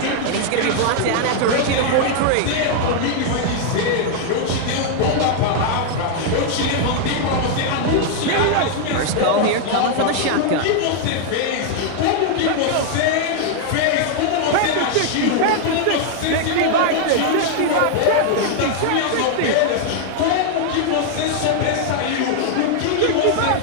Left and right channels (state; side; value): different; both; correlation 0.00